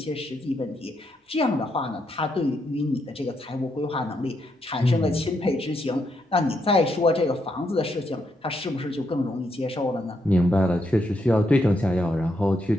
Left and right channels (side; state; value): both; normal; correlation 0.79